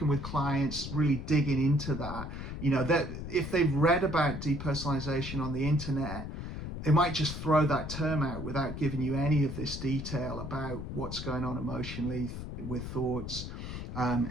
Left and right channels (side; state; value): left; noise; rumble, 7 dB below the sound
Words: with clients, really digging into that, that if they've read about depersonalization on the internet, they might just throw that term out without giving you any of this detail about what's going on emotionally with thoughts,